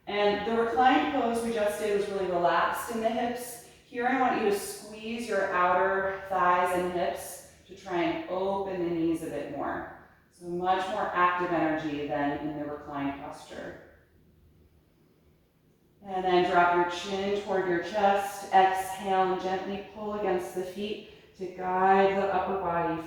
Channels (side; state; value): both; identical; correlation 1.00